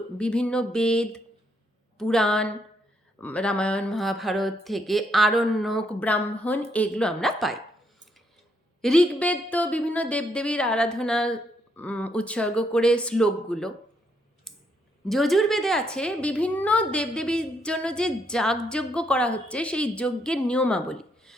বিভিন্ন বেদ, পুরাণ, রামায়ণ মহাভারত থেকে আরণ্যক, ব্রাহ্মণ, এগুলো আমরা পাই। ঋগ্বেদ তো বিভিন্ন দেবদেবীর আরাধনা উৎসর্গ করে শ্লোকগুলো। যজুর্বেদে আছে বিভিন্ন দেবদেবীর জন্য যে যাগযজ্ঞ করা হচ্ছে, সেই যজ্ঞের নিয়মাবলী।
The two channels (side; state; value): both; normal; correlation 0.75